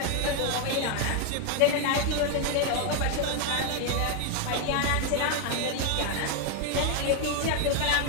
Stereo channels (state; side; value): different; both; correlation 0.01